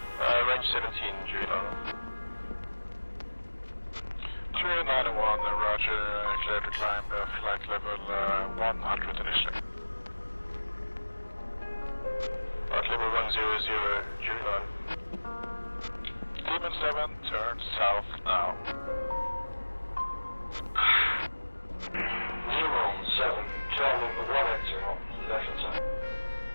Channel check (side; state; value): both; inverted; correlation -1.00